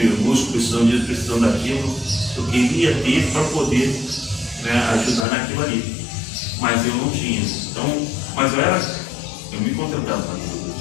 busco precisando disso, precisando daquilo. Eu queria ter para poder ajudar naquilo ali, mas eu não tinha. Então, mas eu me contentava com aquilo.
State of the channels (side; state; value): right; drops out; at 5.2 s